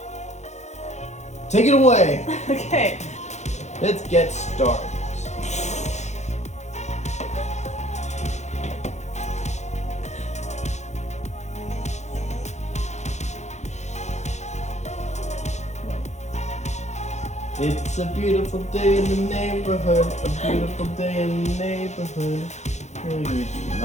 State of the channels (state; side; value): late; right; 0.33 ms